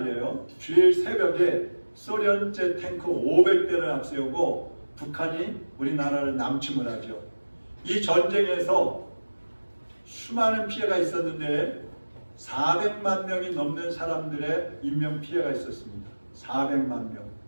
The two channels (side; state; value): both; inverted; correlation -1.00